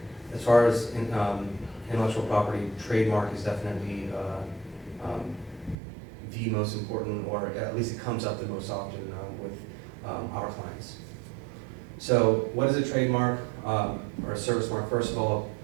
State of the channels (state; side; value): drops out; left; at 5.8 s